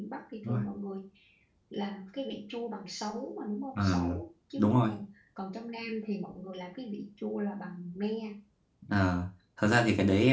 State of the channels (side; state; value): both; identical; correlation 1.00